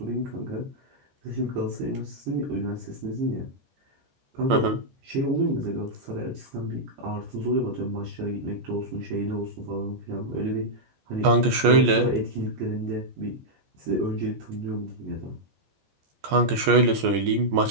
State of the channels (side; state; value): left; late; 14 ms